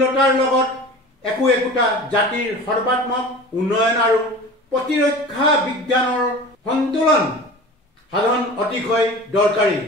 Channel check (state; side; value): normal; both; correlation 0.37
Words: লগত একোটা জাতিৰ সৰ্বাত্মক উন্নয়ন আৰু প্ৰতিৰক্ষা বিজ্ঞানৰ সন্তুলন সাধন অতিশয় দৰকাৰী,